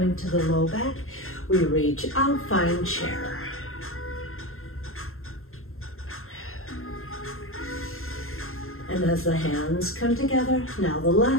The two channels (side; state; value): right; late; 0.61 ms